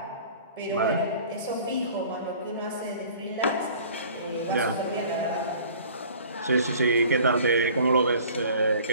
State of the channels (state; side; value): inverted; both; correlation -0.48